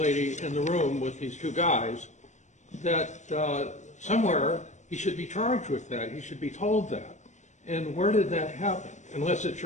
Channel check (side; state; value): right; late; 0.34 ms